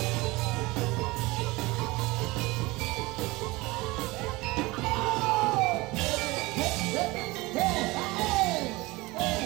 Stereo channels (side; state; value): left; quieter; 22.0 dB